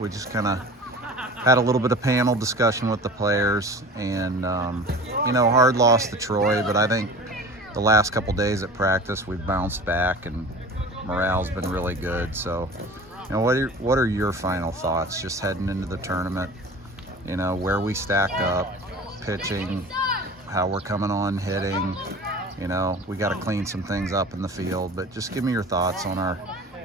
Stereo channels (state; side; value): normal; both; correlation 0.38